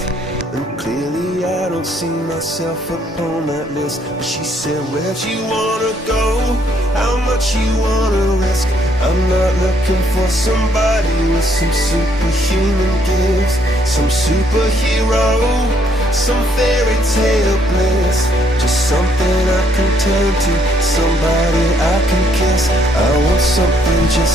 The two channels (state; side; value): normal; both; correlation 0.69